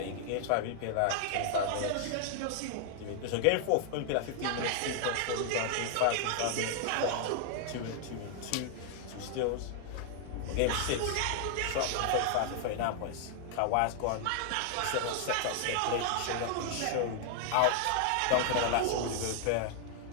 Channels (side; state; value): both; different; correlation 0.00